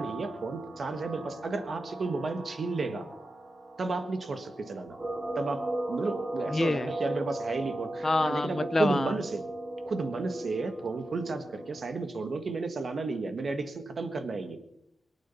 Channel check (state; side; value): normal; both; correlation 0.90